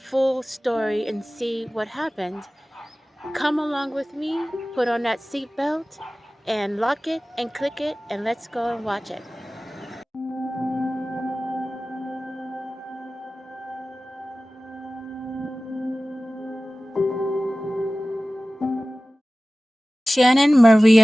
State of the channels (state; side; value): normal; both; correlation 0.97